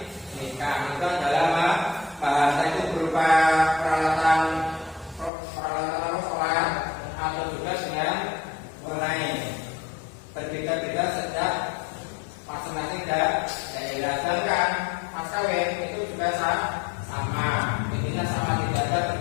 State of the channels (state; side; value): drops out; right; at 5.3 s